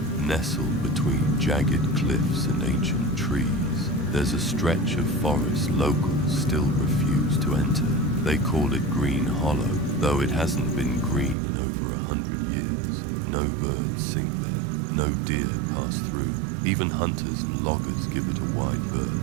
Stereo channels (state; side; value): drops out; left; at 11.4 s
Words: nestled between jagged cliffs and ancient trees, there's a stretch of forest locals still refuse to enter. They call it Green Hollow, though it hasn't been green in over 100 years. No birds sing there, no deer pass through. Even hunters and loggers give it a wide